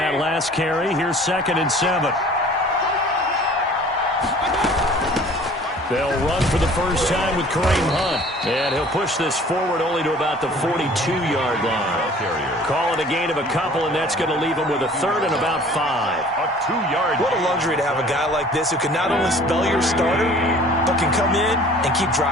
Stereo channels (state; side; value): normal; both; correlation 0.49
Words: last carry. Here's 2nd and 7. They'll run for the first time with Kareem Hunt. And he'll push this forward only to about the 42-yard line. Call it a gain of a couple, and that's going to leave him with a 3rd and about 5. A 2-yard. What a luxury to have a guy like this who can not only spell your starter, but can come in and keep